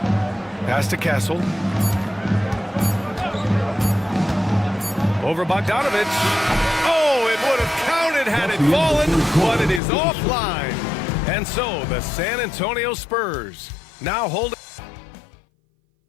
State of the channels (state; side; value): drops out; right; at 9.8 s